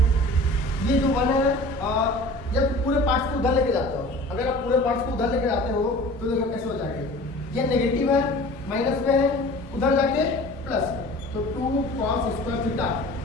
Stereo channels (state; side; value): normal; both; correlation 0.42